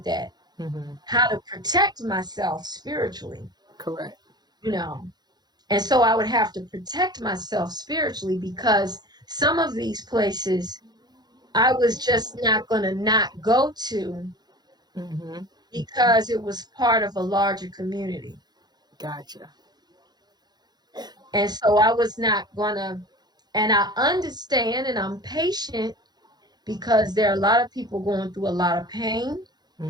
that, Mm-hmm. how to protect myself spiritually, Correct. you know. And so I would have to protect myself spiritually, because some of these places I was just not going to not go to, Mm-hmm. because it was part of a larger community. Gotcha. And so I was not going to, and I understand and I'm patient, because there are a lot of people going through a lot of pain.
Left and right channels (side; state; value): left; late; 0.20 ms